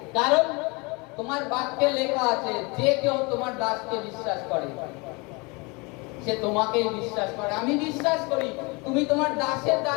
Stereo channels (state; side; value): quieter; right; 28.1 dB